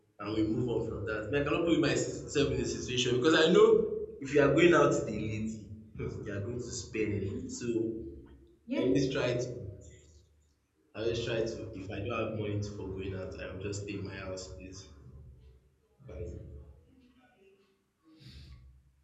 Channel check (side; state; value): both; identical; correlation 1.00